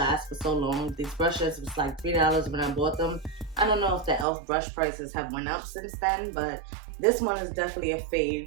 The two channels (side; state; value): left; drops out; at 4.2 s